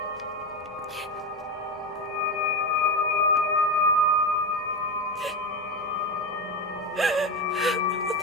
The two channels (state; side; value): normal; both; correlation 0.17